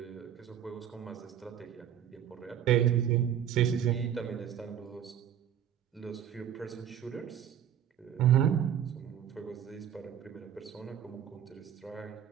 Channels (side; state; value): left; quieter; 9.6 dB